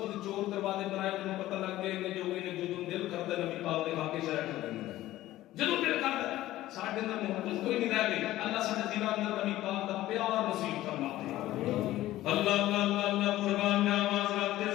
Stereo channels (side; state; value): right; quieter; 15.4 dB